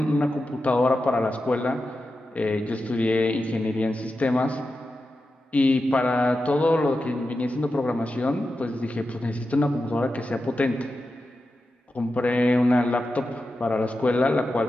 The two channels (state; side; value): normal; both; correlation 0.90